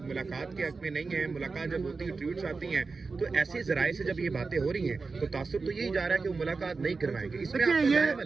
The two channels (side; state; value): left; quieter; 4.3 dB